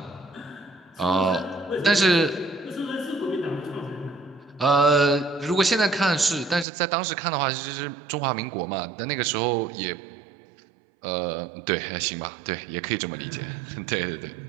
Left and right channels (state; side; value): drops out; left; at 6.7 s